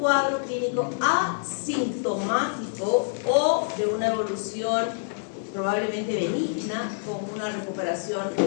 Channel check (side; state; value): right; silent; digital silence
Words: clínico asintomático o de una evolución probablemente benigna, con una recuperación